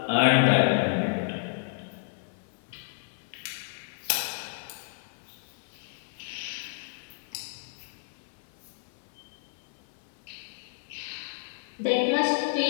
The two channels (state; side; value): silent; right; 56 dB below the other